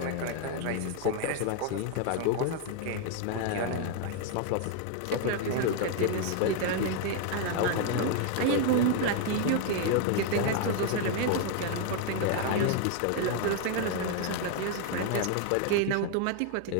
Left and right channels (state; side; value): different; both; correlation 0.01